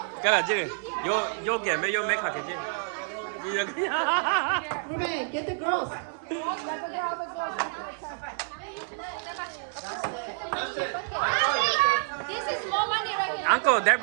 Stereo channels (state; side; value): silent; left; 59 dB below the other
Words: Cái là chứ. Yo get me yo make hot kitchen. Ruben, get the girls. Let's get all the girls. That's it. This is more money right here. Uncle, they